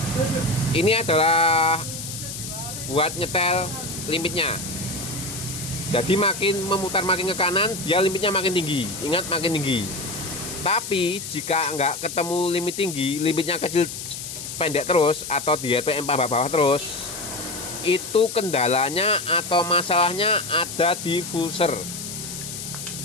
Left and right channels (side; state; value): left; noise; hiss, 8 dB below the sound